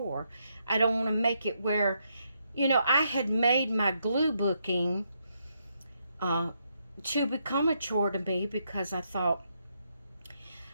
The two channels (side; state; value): both; inverted; correlation -0.77